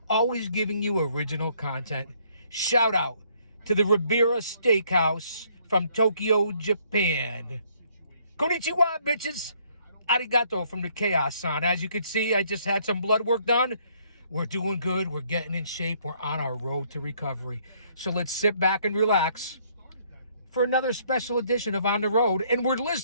always giving you original content. Shout out to the Ribera Steakhouse from Tokyo, Japan. Konnichiwa, bitches. Arigato from the Chaos-san. As you can see, I just had some blood work done. We're doing good. We're getting in shape. We're on our road to recovery. So let's sit back and relax for another special edition of On the Road. And we're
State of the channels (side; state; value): both; inverted; correlation -0.65